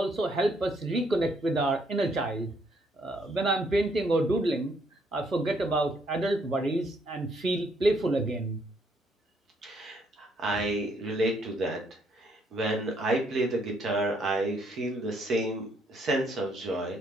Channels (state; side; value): normal; both; correlation 0.70